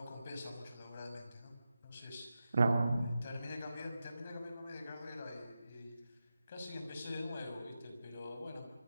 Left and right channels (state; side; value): inverted; both; correlation -0.91